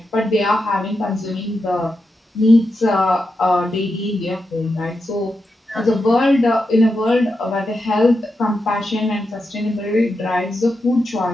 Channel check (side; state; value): both; normal; correlation 0.87